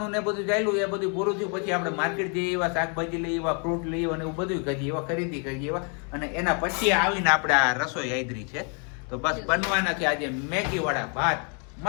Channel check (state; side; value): quieter; right; 38.7 dB